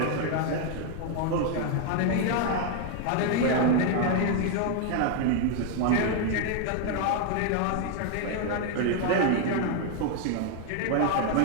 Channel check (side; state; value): both; different; correlation 0.01